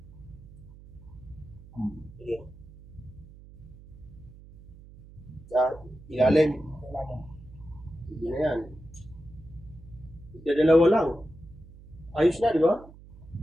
Sige. Ilalim. Hindi na yan. Dalawa lang. Ayos na, di ba?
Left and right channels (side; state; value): right; noise; hum, 19 dB below the sound